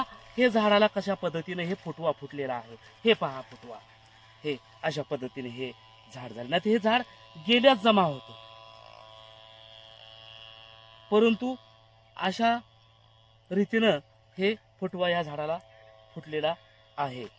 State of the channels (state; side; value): identical; both; correlation 1.00